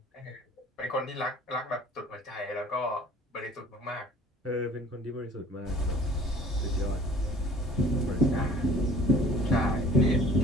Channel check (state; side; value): normal; both; correlation 0.50